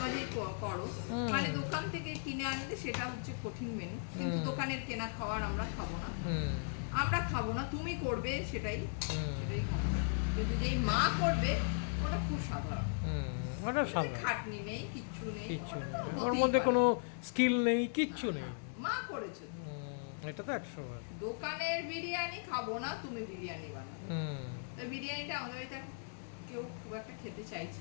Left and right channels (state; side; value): silent; right; digital silence